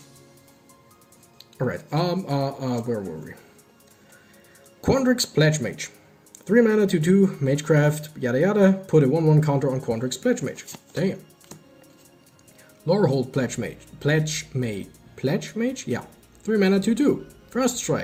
Alright, where were we? Quadrax Pledge Mage. 3 mana, 2/2, Magecraft, yada yada. Put a 1/1 counter on Quadrax Pledge Mage. Damn. Lorehold Pledge Mage? Yeah. 3 mana, 2/2. First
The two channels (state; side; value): identical; both; correlation 1.00